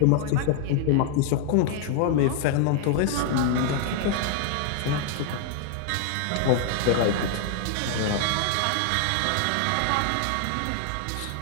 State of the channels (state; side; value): different; both; correlation 0.00